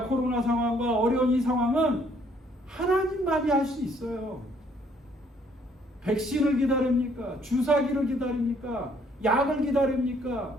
코로나 상황과 어려운 이 상황은 하나님만이 할 수 있어요. 백신을 기다립니까? 주사기를 기다립니까? 약을 기다립니까?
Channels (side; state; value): both; normal; correlation 0.64